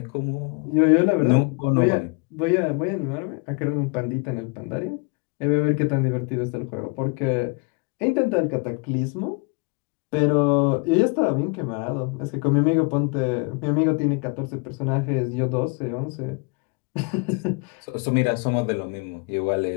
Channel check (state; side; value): quieter; right; 31.3 dB